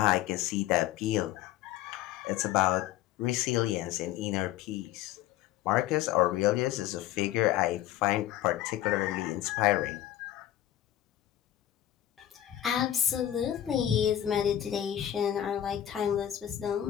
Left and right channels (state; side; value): quieter; right; 12.3 dB